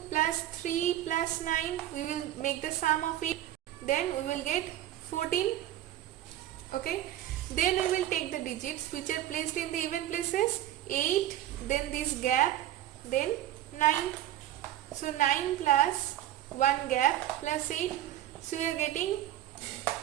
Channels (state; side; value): quieter; left; 13.0 dB